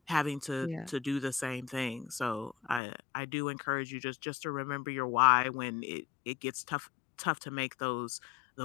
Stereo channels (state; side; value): drops out; right; at 2.8 s